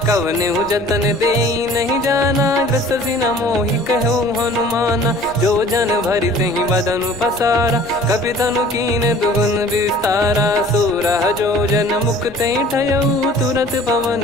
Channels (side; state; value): left; noise; rumble, 21 dB below the sound